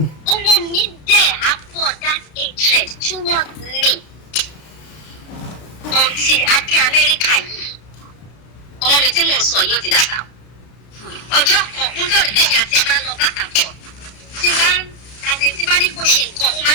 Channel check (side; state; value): right; late; 33 ms